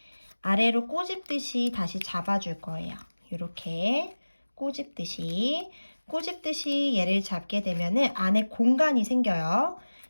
꼬집듯이 다시 잡아줄 거예요. 이렇게 꼬집듯이 얘를 잡게 되면은 안에 공간이 생겨요.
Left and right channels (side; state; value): both; inverted; correlation -1.00